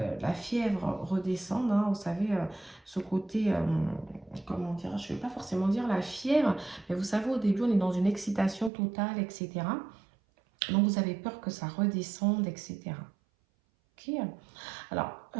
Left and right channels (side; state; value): left; drops out; at 8.7 s